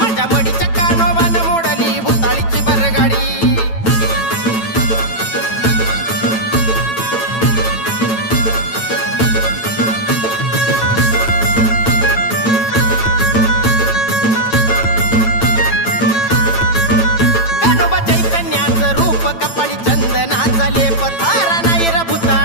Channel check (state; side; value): late; right; 9.0 ms